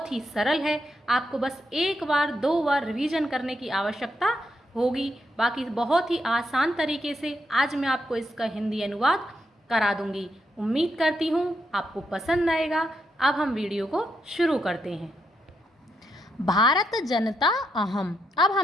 ही सरल है। आपको बस एक बार 2 बार रिवीजन करने की आवश्यकता होगी। बाकी बहुत ही आसान तरीके से आज मैं आपको इसका हिंदी अनुवाद करा दूंगी। उम्मीद करती हूँ आपको पसंद आएगा। अब हम वीडियो को शुरू करते हैं। भारत जनता अहम। अब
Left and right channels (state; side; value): normal; both; correlation 0.80